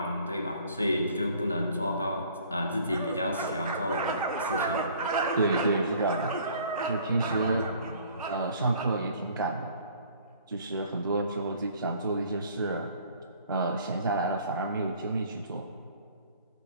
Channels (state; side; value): inverted; both; correlation -0.55